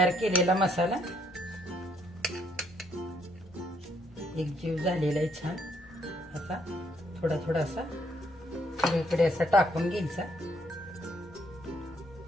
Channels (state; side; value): normal; both; correlation 0.69